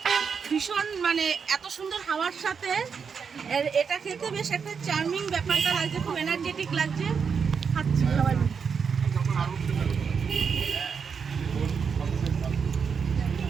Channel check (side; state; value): left; quieter; 6.2 dB